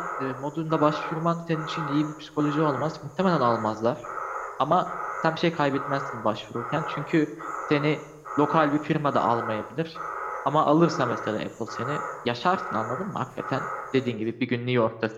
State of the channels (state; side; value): identical; both; correlation 1.00